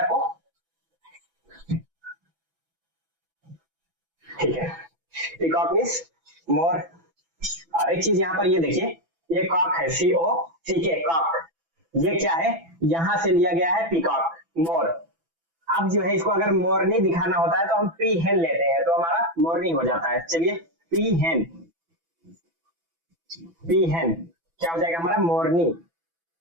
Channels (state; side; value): late; left; 6.0 ms